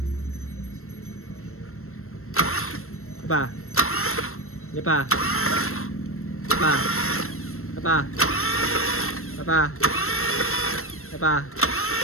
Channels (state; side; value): late; right; 0.63 ms